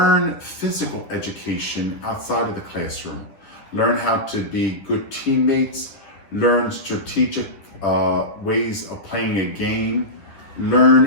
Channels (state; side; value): late; right; 10 ms